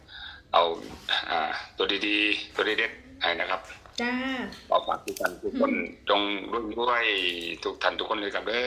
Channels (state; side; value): identical; both; correlation 1.00